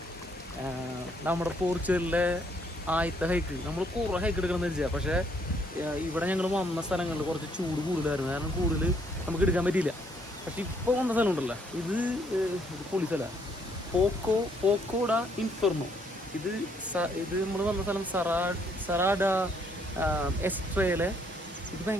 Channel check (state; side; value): normal; both; correlation 0.69